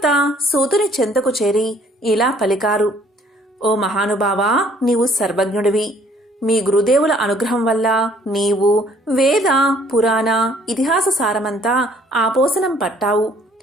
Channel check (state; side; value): normal; both; correlation 0.60